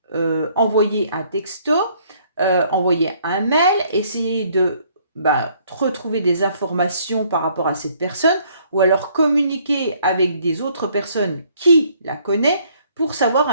envoyer un texto, envoyer un mail, essayer de retrouver des informations par rapport à cette personne, ou alors communiquer avec des autres personnes qui la connaissent pour savoir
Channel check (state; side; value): inverted; both; correlation -0.64